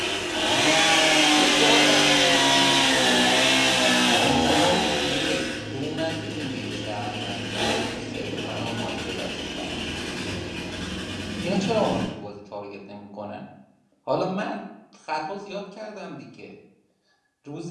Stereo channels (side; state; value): both; identical; correlation 1.00